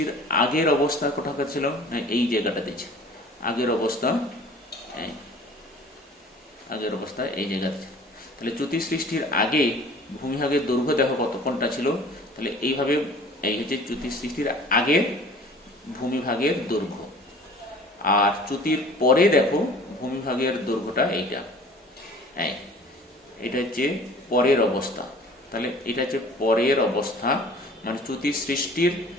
আগের অবস্থা কোথাকার ছিল, এই জায়গাটাতে ছিল আগের অবস্থা, এই জায়গাতে ছিল। তাহলে চ্যুতি সৃষ্টির আগে ভূমিভাগের দৈর্ঘ্য দেখো কত, কোনটা ছিল, তাহলে এইভাবে এই হচ্ছে চ্যুতি সৃষ্টির আগের ভূমিভাগের দৈর্ঘ্য। আর চ্যুতির পরে দেখো ভূমিভাগের দৈর্ঘ্যটা এইটা, এটা হচ্ছে পরের অবস্থা। তাহলে এটা হচ্ছে পরের অবস্থা, মানে চ্যুতি সৃষ্টির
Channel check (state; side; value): normal; both; correlation 0.47